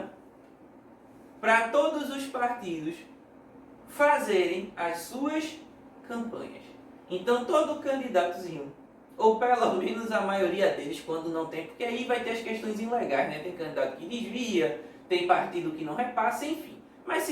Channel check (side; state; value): both; identical; correlation 1.00